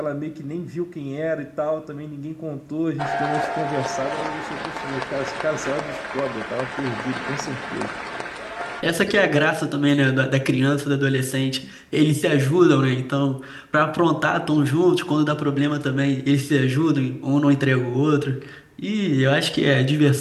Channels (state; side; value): identical; both; correlation 1.00